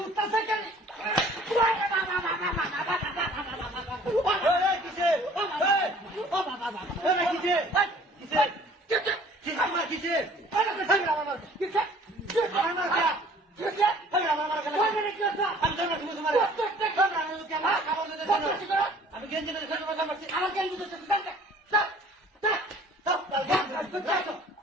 উঠতেছে কেন আমি গেঞ্জি আমার গেঞ্জি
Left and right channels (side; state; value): both; normal; correlation 0.52